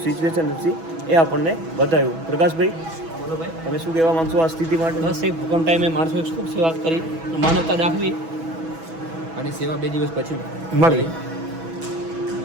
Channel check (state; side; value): late; left; 6.1 ms